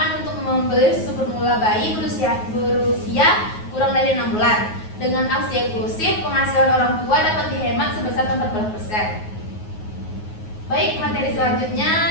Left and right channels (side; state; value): right; late; 9.4 ms